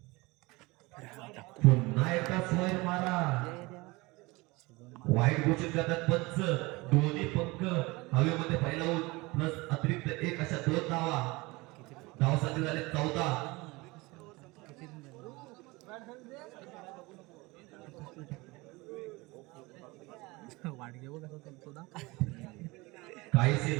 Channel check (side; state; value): left; quieter; 23.3 dB